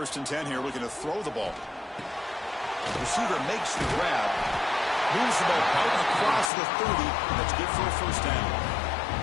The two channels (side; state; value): right; drops out; at 6.5 s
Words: and 10 here, looking to throw the ball. The receiver makes the grab. Moves the ball out across the 30. That's good for a first down.